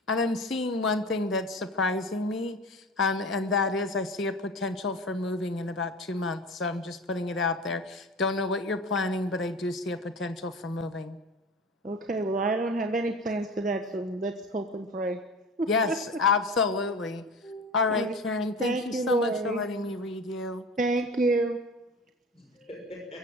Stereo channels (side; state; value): both; normal; correlation 0.34